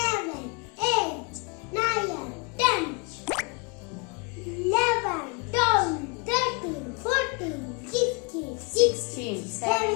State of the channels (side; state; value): right; quieter; 32.0 dB